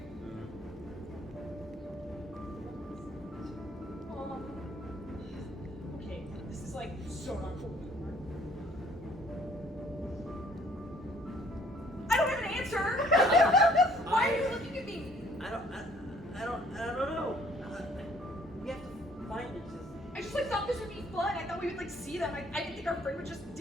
Okay, this is like so not cool. I don't have an answer. Why are you looking at me? I don't know. We have to find it. I just like thought this would be fun. I thought we would like see them. I didn't think our friend would just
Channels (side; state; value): both; normal; correlation 0.59